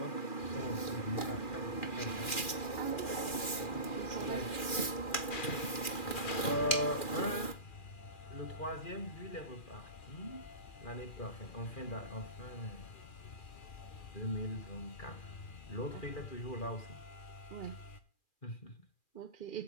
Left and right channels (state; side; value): late; right; 2.4 ms